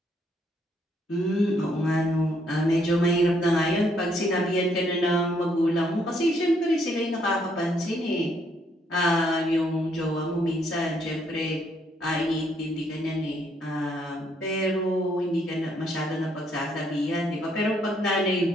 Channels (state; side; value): normal; both; correlation 0.71